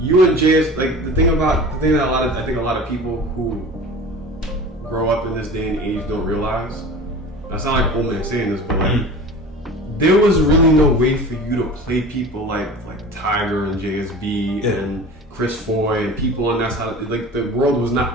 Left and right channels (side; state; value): both; normal; correlation 0.37